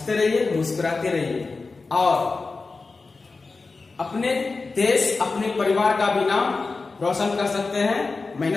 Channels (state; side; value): quieter; right; 4.0 dB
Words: रहिए, मुस्कुराते रहिए, और अपने देश, अपने परिवार का भी नाम रोशन कर सकते हैं